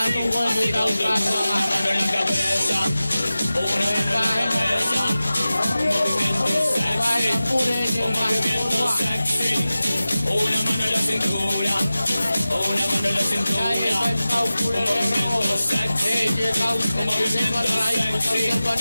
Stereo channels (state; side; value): inverted; both; correlation -0.96